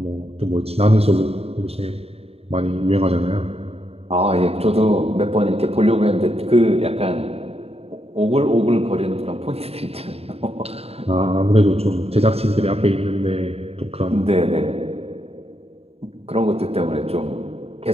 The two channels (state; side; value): late; left; 0.29 ms